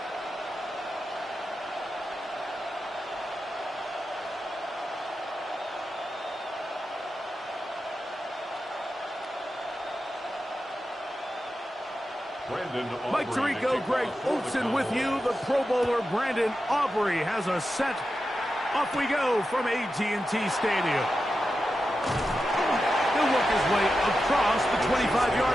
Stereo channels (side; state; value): both; normal; correlation 0.90